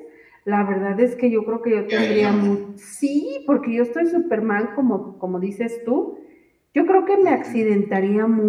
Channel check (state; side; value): identical; both; correlation 1.00